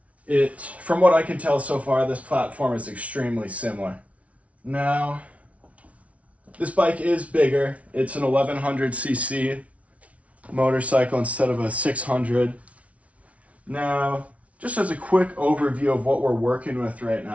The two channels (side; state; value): left; late; 0.065 ms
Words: from what I can tell so far, this platform is extremely similar. Now, this bike is bigger. It's an 1100cc motorcycle instead of a 600. Now, just as a quick overview of what we're working with right